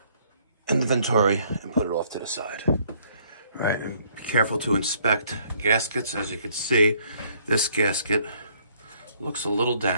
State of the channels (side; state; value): both; inverted; correlation -0.64